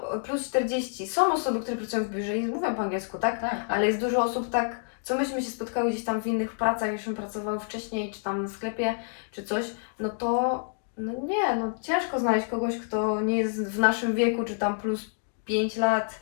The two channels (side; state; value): right; silent; digital silence